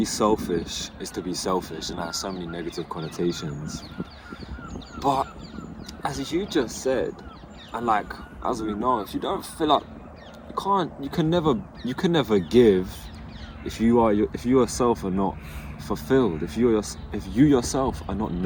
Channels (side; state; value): both; identical; correlation 1.00